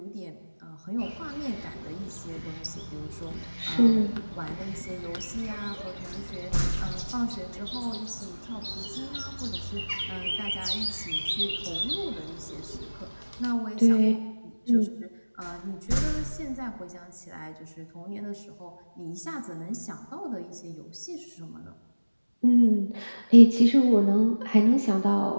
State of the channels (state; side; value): inverted; both; correlation -1.00